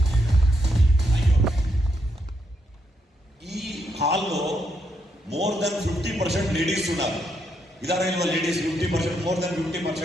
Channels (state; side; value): normal; both; correlation 0.78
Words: ఈ హాల్లో మోర్ దెన్ 50% లేడీస్ ఉన్నారు. ಇದಾರೆ ಇಲ್ವಾ ladies? 50%, more than